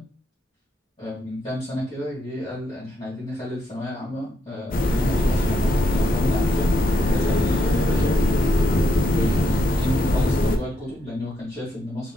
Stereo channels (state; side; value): normal; both; correlation 0.78